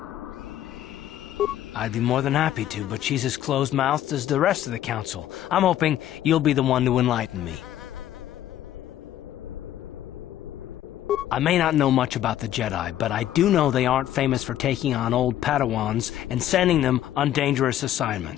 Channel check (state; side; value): quieter; right; 12.1 dB